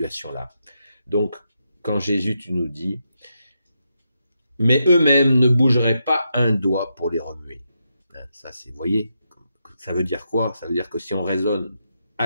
Donc, quand Jésus, tu nous dis, mais eux-mêmes ne bougeraient pas un doigt pour les remuer. Ça, vous voyez, ça veut dire quoi? Ça veut dire que si on raisonne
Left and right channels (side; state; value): both; inverted; correlation -0.84